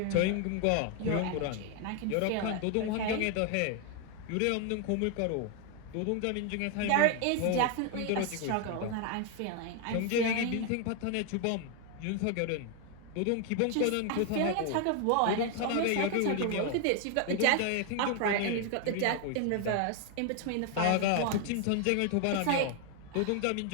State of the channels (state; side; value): different; both; correlation 0.01